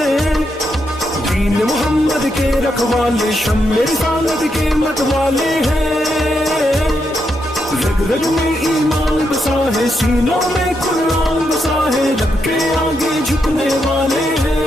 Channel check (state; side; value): normal; both; correlation 0.81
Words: دین محمد کے رکھوالے شمع رسالت کے مت والے ہیں، رگ رگ میں ایمان بسا ہے، سینوں میں قرآن بسا ہے، رب کے آگے جھکنے والے